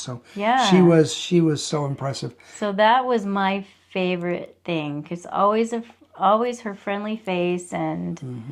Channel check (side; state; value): both; identical; correlation 1.00